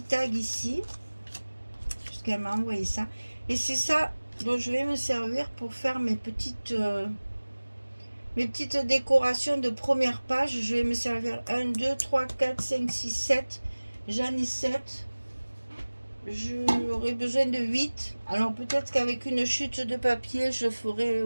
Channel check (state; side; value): inverted; both; correlation -1.00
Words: tags ici. Puisqu'elle m'a envoyé ça. Et c'est ça dont je vais me servir pour faire mes petites décorations de première page. Je vais me servir 1, 2, 3, 4, 5, 6, 7. J'en ai 7. J'aurai besoin de 8. Alors peut-être qu'avec une chute de papier, je ferai